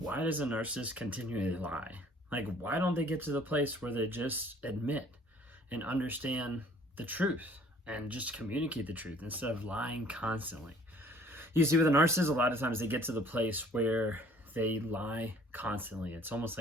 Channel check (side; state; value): both; normal; correlation 0.56